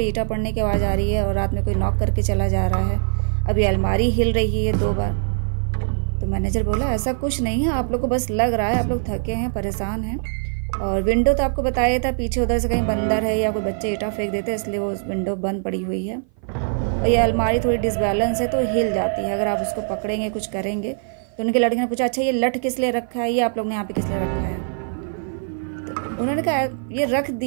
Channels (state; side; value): silent; left; 57 dB below the other